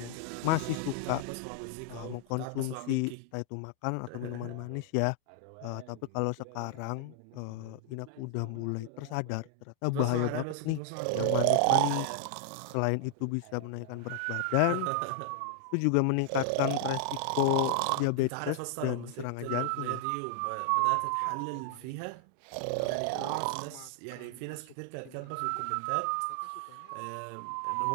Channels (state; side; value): different; both; correlation 0.00